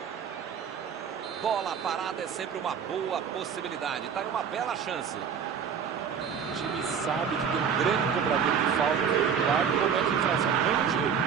Bola parada é sempre uma boa possibilidade. Tá aí uma bela chance. O time sabe que tem um grande cobrador de falta do lado e comete infração no mesmo time.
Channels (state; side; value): quieter; left; 7.2 dB